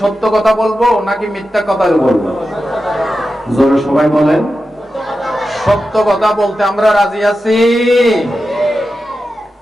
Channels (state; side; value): normal; both; correlation 0.91